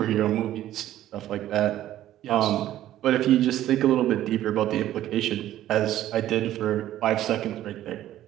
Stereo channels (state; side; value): quieter; left; 13.1 dB